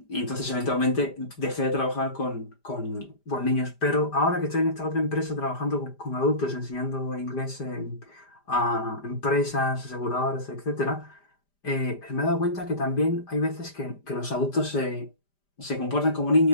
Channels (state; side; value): late; right; 5.0 ms